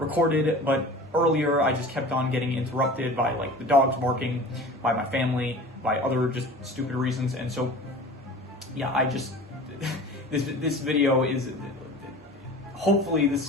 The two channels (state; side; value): normal; both; correlation 0.39